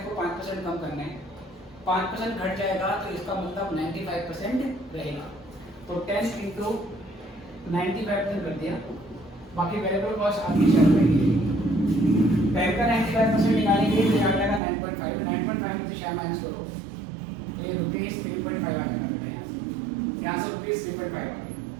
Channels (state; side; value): drops out; left; at 14.6 s